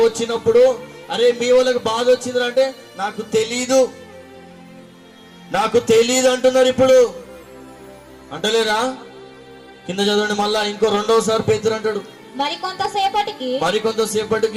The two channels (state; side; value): identical; both; correlation 1.00